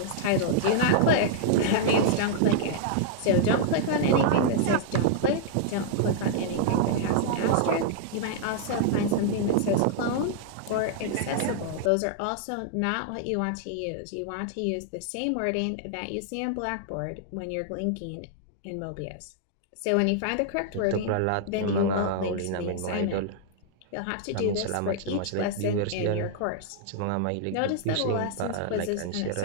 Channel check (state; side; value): different; both; correlation -0.01